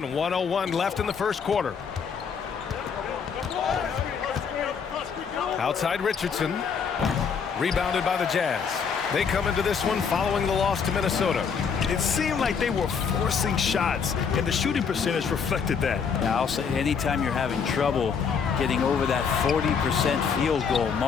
1:01 left in the first quarter. Outside Richardson. Rebounded by the Jazz. They come into this one following the loss to Minnesota. It seemed like they were forcing shots, and the shooting percentage reflected that. Yeah, I'll say anytime you're having trouble getting over that 40% field goal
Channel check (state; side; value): quieter; right; 6.3 dB